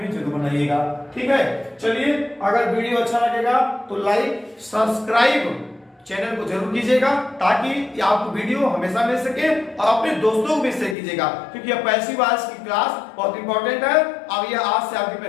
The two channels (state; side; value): drops out; right; at 11.0 s